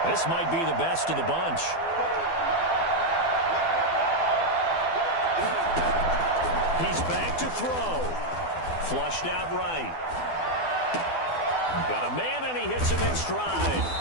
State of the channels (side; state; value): right; late; 12 ms